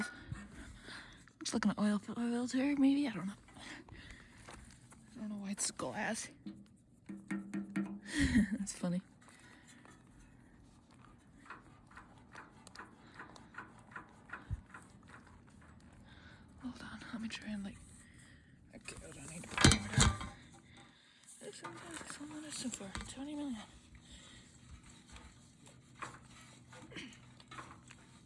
Looks like an oil filter, maybe? I don't know. I don't know why it's glass. That's funny. Hold on, let me try and like... Okay, hold on, I need to put the camera down. Sometimes so far, 20 million.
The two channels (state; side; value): identical; both; correlation 1.00